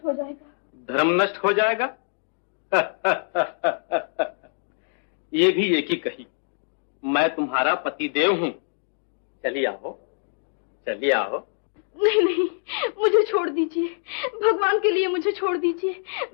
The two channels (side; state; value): right; silent; digital silence